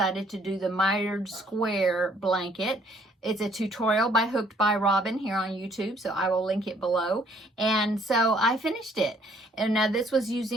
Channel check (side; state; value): both; normal; correlation 0.63